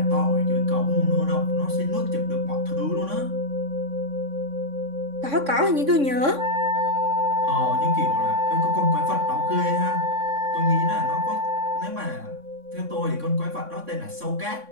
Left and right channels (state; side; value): late; left; 3.6 ms